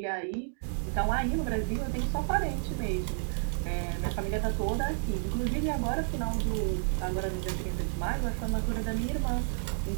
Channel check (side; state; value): left; silent; 57 dB below the other